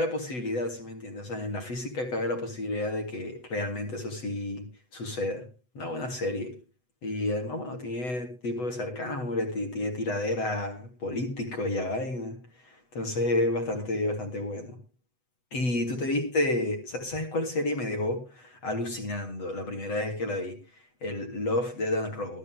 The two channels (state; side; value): late; right; 8.0 ms